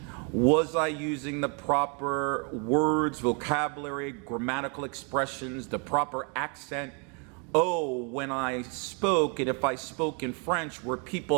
Was I using the proper words, vocabulary, grammatical expressions, the proper accent? Oh, when I spoke, and if I spoke in French, were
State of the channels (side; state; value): left; quieter; 36.2 dB